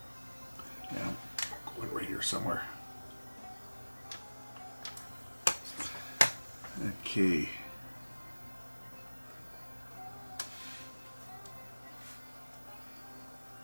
Yeah, going right here somewhere. Okay.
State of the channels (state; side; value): inverted; both; correlation -1.00